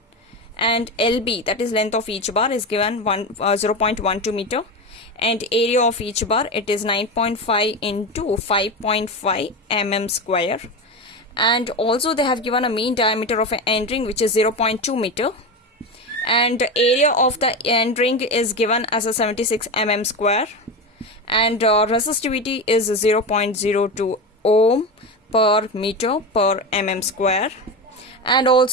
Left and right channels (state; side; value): normal; both; correlation 0.20